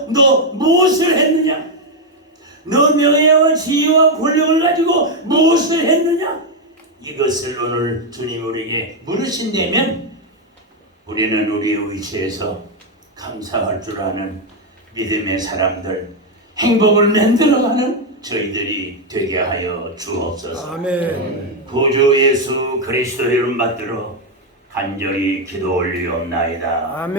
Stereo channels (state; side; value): normal; both; correlation 0.03